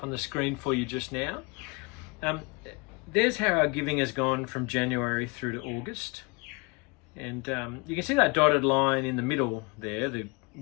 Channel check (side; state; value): right; quieter; 29.0 dB